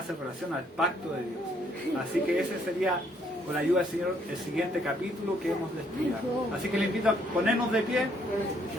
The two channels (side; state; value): both; normal; correlation 0.68